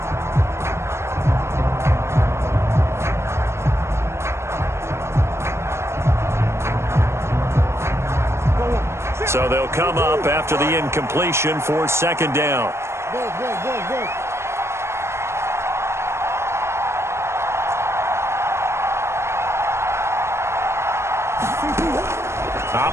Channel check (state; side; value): late; left; 0.13 ms